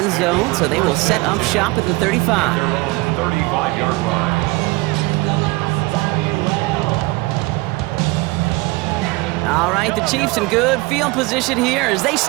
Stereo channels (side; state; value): left; quieter; 23.5 dB